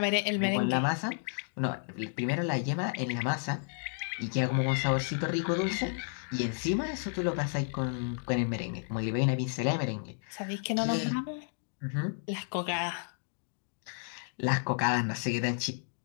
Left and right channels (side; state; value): right; silent; 56 dB below the other